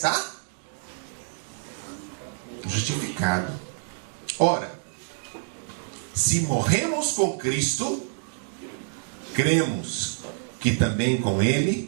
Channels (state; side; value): silent; left; digital silence